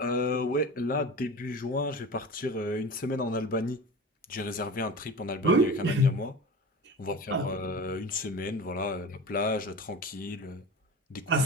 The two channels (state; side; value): normal; both; correlation 0.32